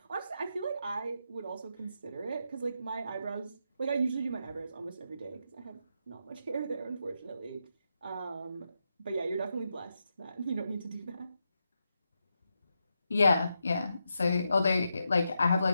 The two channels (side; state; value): both; inverted; correlation -0.85